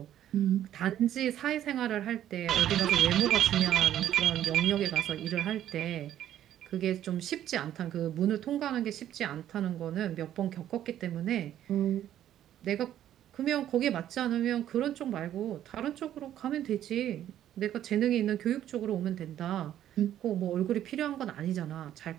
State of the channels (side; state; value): left; quieter; 11.5 dB